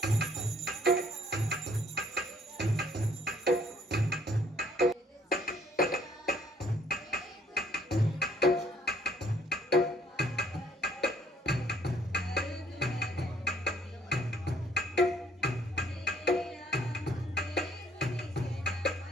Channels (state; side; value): normal; both; correlation 0.63